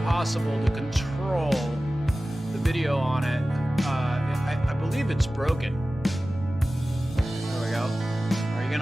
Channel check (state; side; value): normal; both; correlation 0.96